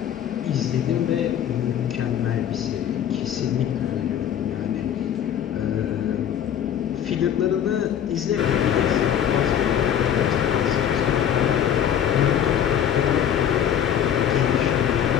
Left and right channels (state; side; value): quieter; right; 9.5 dB